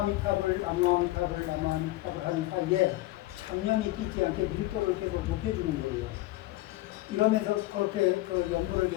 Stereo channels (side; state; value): right; quieter; 17.8 dB